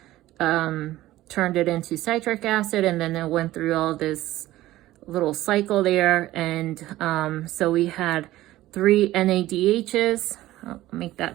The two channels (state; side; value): quieter; left; 15.8 dB